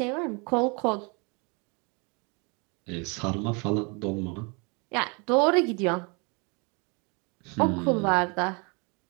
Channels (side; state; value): left; quieter; 31.5 dB